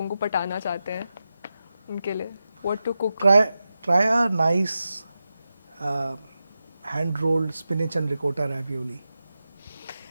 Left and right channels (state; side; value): inverted; both; correlation -0.91